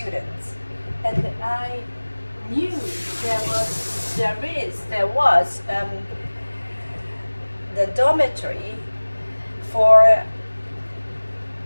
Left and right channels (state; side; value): inverted; both; correlation -1.00